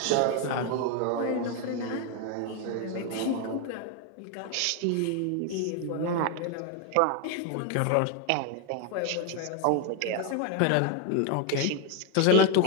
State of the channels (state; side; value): different; both; correlation 0.01